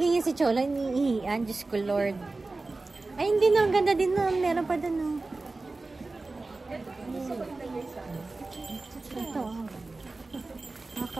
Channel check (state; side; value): quieter; left; 3.4 dB